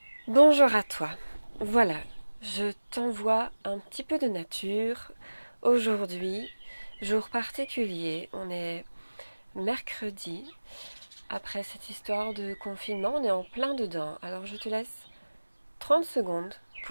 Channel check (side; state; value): both; inverted; correlation -1.00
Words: Bonjour à toi. Voilà, je t'envoie un petit peu de nature. Aujourd'hui, jour particulier, on est mercredi. Après cette histoire de confinement, on est en plein dedans. Alors je te laisse 30 secondes